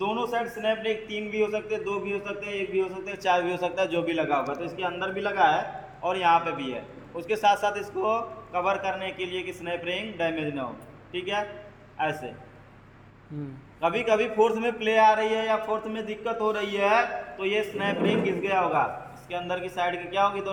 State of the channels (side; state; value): both; identical; correlation 1.00